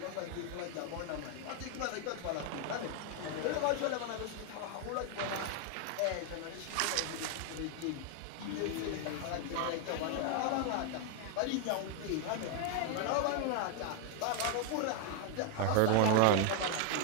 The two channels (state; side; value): different; both; correlation 0.01